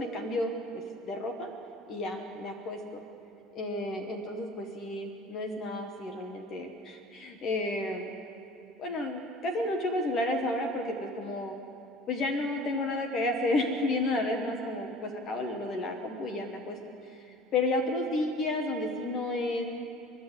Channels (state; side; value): normal; both; correlation 0.44